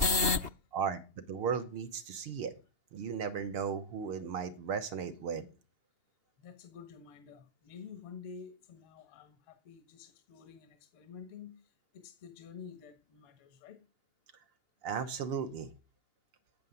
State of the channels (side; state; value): left; late; 2.8 ms